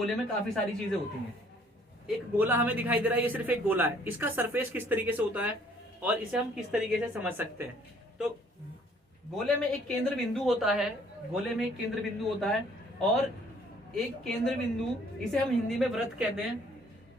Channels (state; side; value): normal; both; correlation 0.60